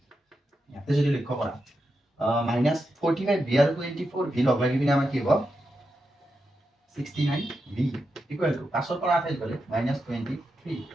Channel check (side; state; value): both; normal; correlation 0.87